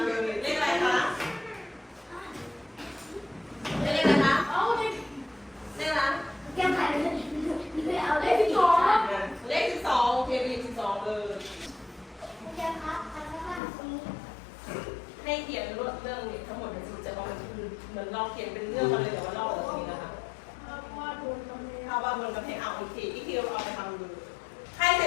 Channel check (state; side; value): drops out; right; at 13.6 s